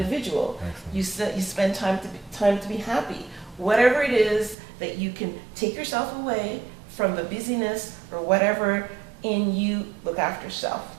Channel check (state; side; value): drops out; left; at 4.5 s